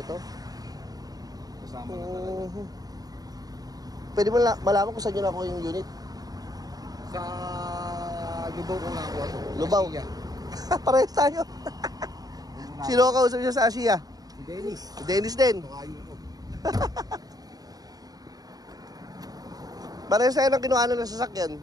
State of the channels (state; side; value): late; left; 0.18 ms